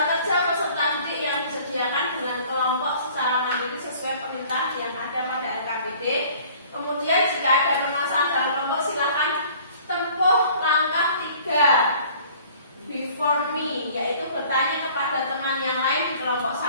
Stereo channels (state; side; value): inverted; both; correlation -0.51